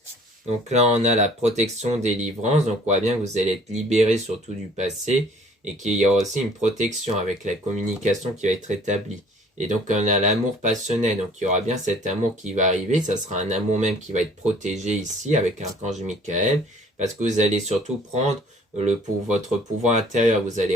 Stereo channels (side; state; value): both; normal; correlation 0.54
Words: Donc là, on a la protection délivrance. Donc on voit bien que vous allez être libéré surtout du passé et qu'il y aura aussi une protection avec la communication qui va être établie. Et donc on a l'amour passionnel. Donc il y aura bien cet amour qui va arriver. Ça sera un amour même qui va être protégé ici avec l'archange Michael parce que vous allez surtout prendre pour votre pouvoir intérieur. Vous allez